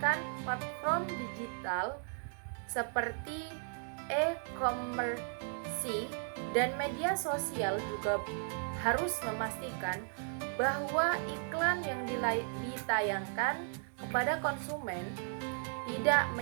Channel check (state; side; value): silent; left; 54 dB below the other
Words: platform digital seperti e-commerce dan media sosial juga harus memastikan bahwa iklan yang ditayangkan kepada konsumen tidak